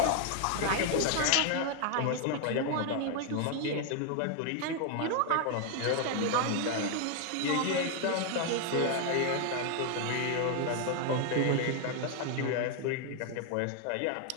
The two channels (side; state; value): both; different; correlation 0.00